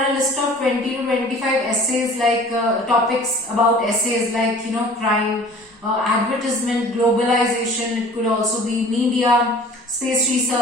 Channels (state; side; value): normal; both; correlation 0.47